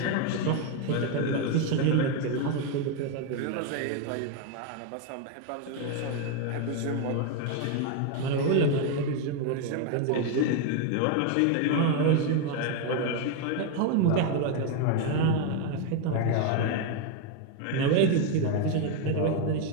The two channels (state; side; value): different; both; correlation 0.01